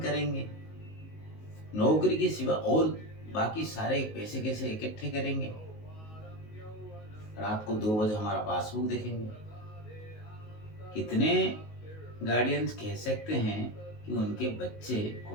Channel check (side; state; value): right; late; 19 ms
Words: नौकरी के सिवा और बाकी सारे पैसे कैसे इकट्ठे करेंगे, रात को 2 बजे हमारा पासबुक देखेंगे। कितने गार्डियंस कह सकते हैं कि उनके बच्चे